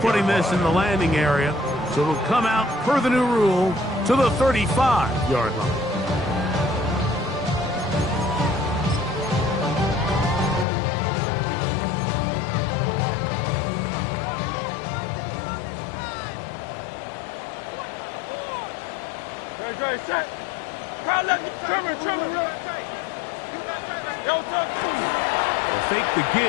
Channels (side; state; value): right; drops out; at 10.7 s